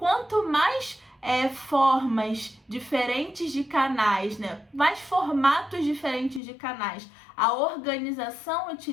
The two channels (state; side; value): drops out; right; at 6.4 s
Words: mais formas diferentes de canais, né, mais formatos diferentes de canais a organização